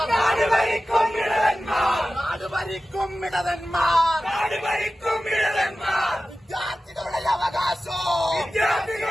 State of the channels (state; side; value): normal; both; correlation 0.95